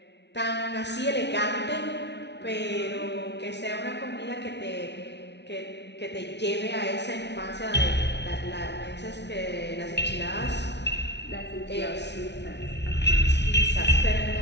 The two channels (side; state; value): right; late; 0.50 ms